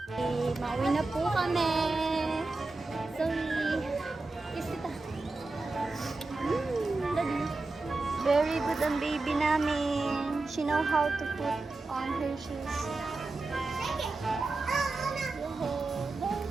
Mauwi na po kami. Sorry. Kiss kita. Daddy. Very good ang baby namin. She know how to put on her shoes.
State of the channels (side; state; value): left; quieter; 3.4 dB